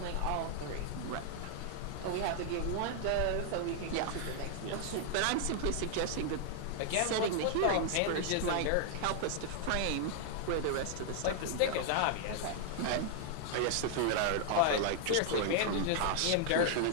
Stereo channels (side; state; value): both; different; correlation 0.00